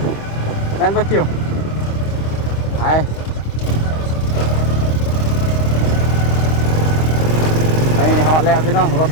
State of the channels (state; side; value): late; right; 26 ms